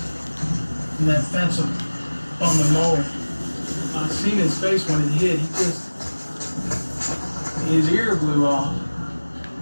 from that fence on the mower. I seen his face when it hit. His ear blew off,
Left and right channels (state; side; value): inverted; both; correlation -1.00